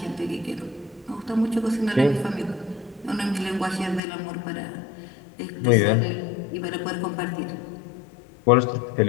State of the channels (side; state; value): right; drops out; at 4.0 s